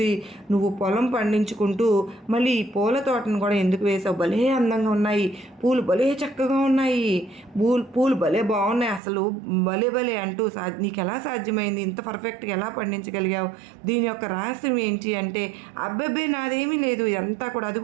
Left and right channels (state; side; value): drops out; left; at 9.0 s